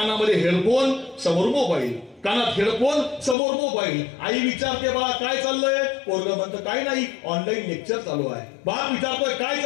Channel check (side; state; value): right; drops out; at 3.4 s